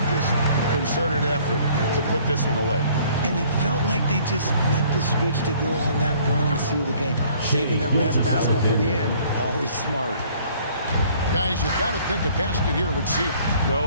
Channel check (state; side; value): inverted; both; correlation -0.57